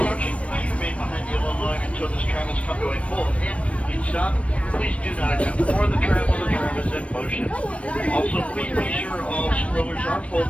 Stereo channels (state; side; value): late; right; 0.063 ms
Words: please remain behind the yellow line until this tram has come to a full and complete stop. Please do not attempt to board the tram while the tram is in motion. Also, please be sure all strollers are